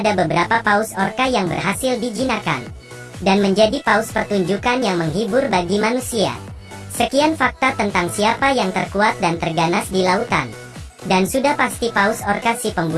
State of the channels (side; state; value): both; identical; correlation 1.00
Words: beberapa paus orca yang berhasil dijinakkan dan menjadi paus pertunjukan yang menghibur bagi manusia. Sekian fakta tentang siapa yang terkuat dan terganas di lautan. Dan sudah pasti paus orca si